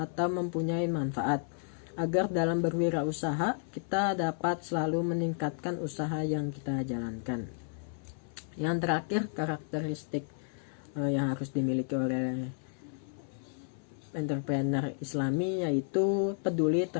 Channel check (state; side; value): silent; right; 56 dB below the other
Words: mempunyai manfaat, agar dalam berwirausaha kita dapat selalu meningkatkan usaha yang kita jalankan. Yang terakhir, karakteristik yang harus dimiliki oleh entrepreneur Islami yaitu peduli